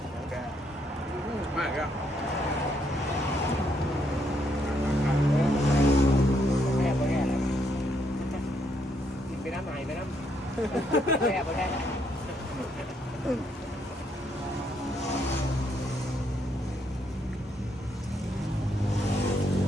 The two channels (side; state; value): both; normal; correlation 0.74